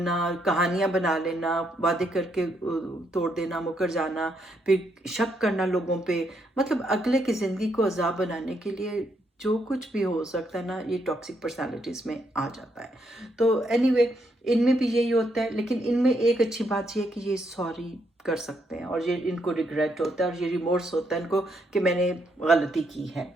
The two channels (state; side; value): normal; both; correlation 0.76